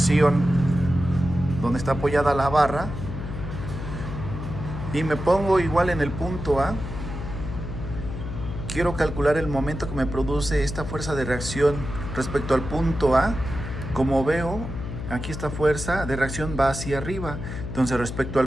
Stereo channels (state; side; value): noise; left; hum, 7 dB below the sound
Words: donde está apoyada la barra, y me pongo igual en el punto A, quiero calcular el momento que me produce esta fuerza de reacción respecto al punto A. Como veo, aquí esta fuerza de reacción va hacia arriba. Entonces, respecto